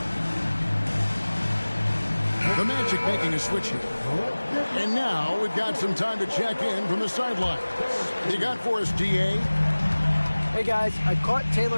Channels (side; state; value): both; inverted; correlation -1.00